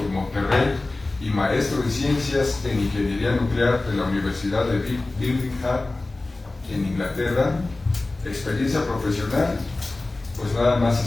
de Monterrey y maestro en ciencias en ingeniería nuclear de la Universidad de Birmingham en Inglaterra. Experiencia profesional, pues nada más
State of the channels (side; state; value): right; quieter; 3.1 dB